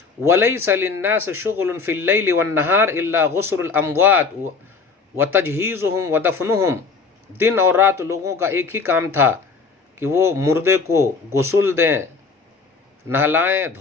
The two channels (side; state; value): right; quieter; 4.7 dB